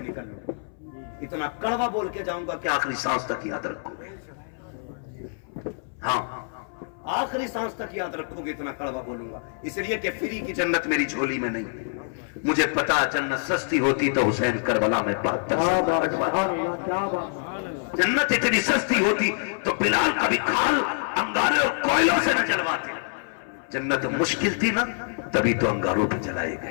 نکل لوں، اتنا کڑوا بول کے جاؤں گا کہ آخری سانس تک یاد رکھو گے۔ ہاں آخری سانس تک یاد رکھو گے، اتنا کڑوا بولوں گا، اس لیے کہ فری کی جنت میری جھولی میں نہیں، مجھے پتا جنت سستی ہوتی تو حسین کربلا میں جنت اتنی سستی ہوتی تو بلال کبھی کھال انگارے اور کوئلوں سے نہ جلواتے۔ جنت مشکل تھی نا، تبھی تو انگاروں پہ جلائے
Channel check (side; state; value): right; silent; 61 dB below the other